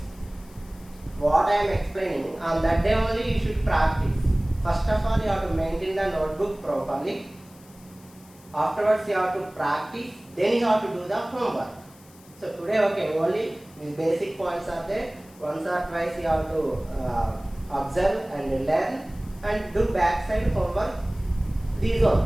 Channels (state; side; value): noise; left; hiss, 25 dB below the sound